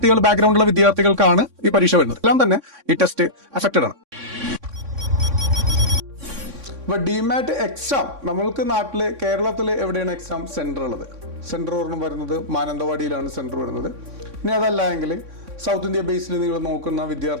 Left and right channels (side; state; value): left; late; 3.6 ms